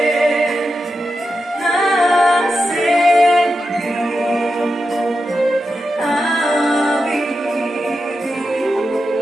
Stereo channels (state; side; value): normal; both; correlation 0.89